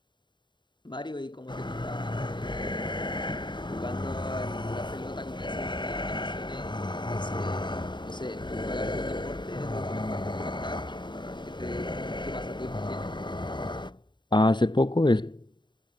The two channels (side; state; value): right; late; 0.22 ms